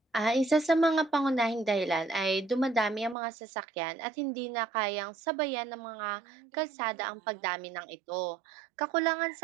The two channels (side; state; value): left; drops out; at 3.2 s